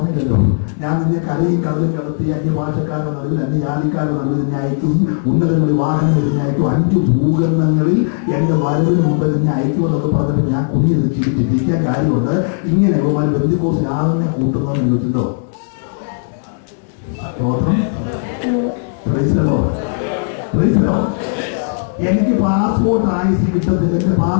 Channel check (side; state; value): right; silent; 68 dB below the other